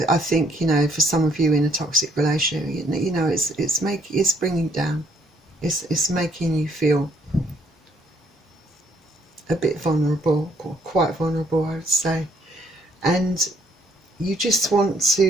think, you know, for some of you in a toxic relationship, you know, it's bringing you down. It's making you feel a bit vulnerable, or quite vulnerable, I would say. And you just want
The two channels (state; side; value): normal; both; correlation 0.67